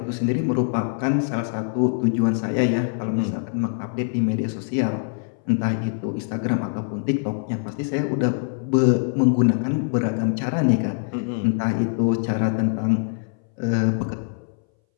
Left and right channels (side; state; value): right; silent; 61 dB below the other